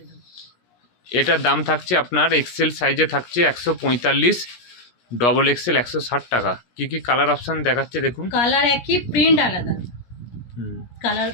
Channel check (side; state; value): right; late; 17 ms